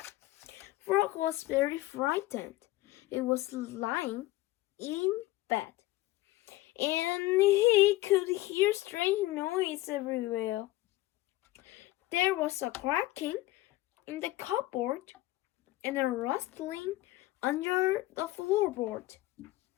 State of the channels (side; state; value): right; quieter; 17.8 dB